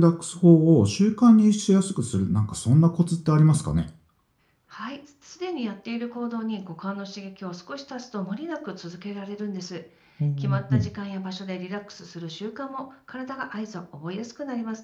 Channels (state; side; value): identical; both; correlation 1.00